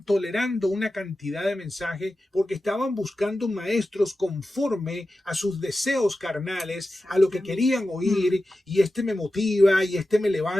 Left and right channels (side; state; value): both; normal; correlation 0.93